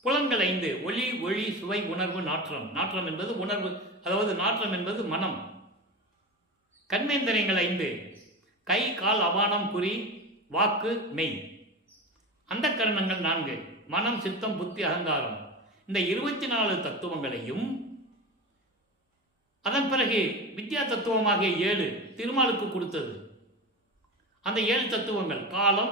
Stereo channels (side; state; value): both; normal; correlation 0.26